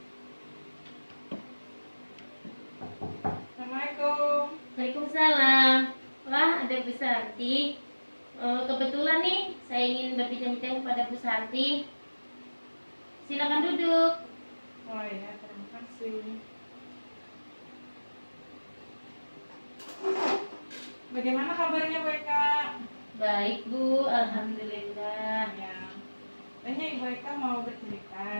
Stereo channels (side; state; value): both; inverted; correlation -1.00